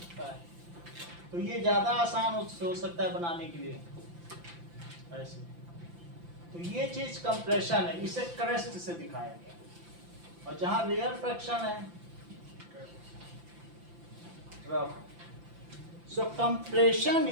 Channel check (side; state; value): left; late; 5.8 ms